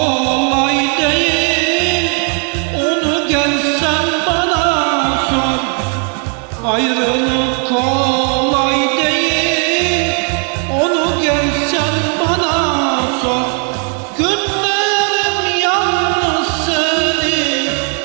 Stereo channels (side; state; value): left; quieter; 39.7 dB